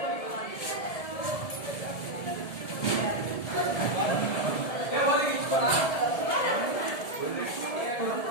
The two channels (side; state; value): right; late; 1.7 ms